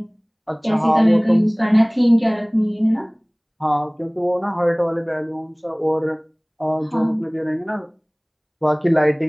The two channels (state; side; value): identical; both; correlation 1.00